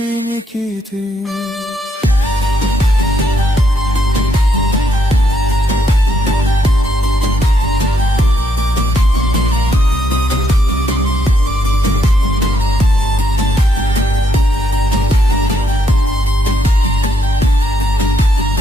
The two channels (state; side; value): normal; both; correlation 0.74